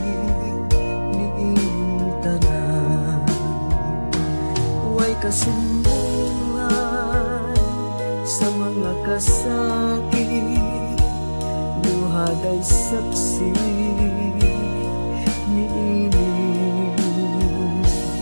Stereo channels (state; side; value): inverted; both; correlation -1.00